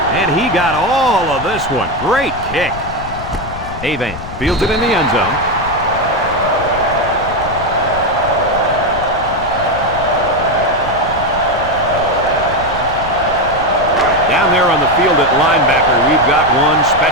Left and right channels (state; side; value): noise; left; rumble, 11 dB below the sound